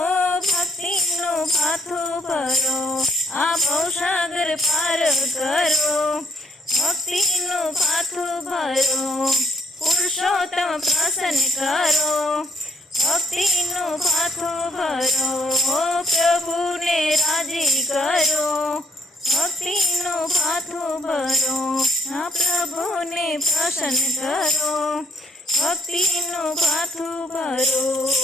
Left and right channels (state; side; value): normal; both; correlation 0.69